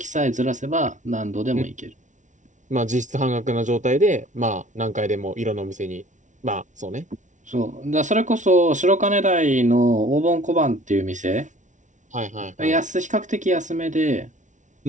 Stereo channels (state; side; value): late; left; 0.36 ms